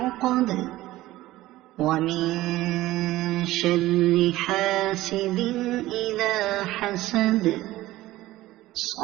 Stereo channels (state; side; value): quieter; left; 16.6 dB